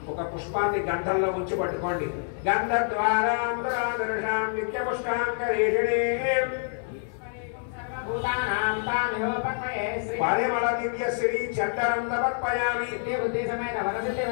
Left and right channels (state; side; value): silent; right; 60 dB below the other